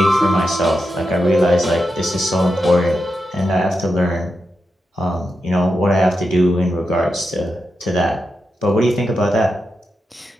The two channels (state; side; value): normal; both; correlation 0.88